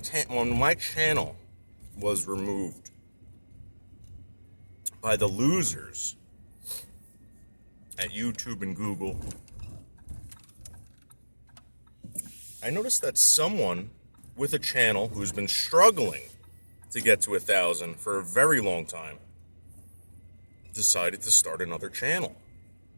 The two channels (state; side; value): inverted; both; correlation -1.00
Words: was removed by the losers at YouTube and Google, I noticed that someone with a channel who's been struggling to get to 1,000 for a very long time decided to start another channel.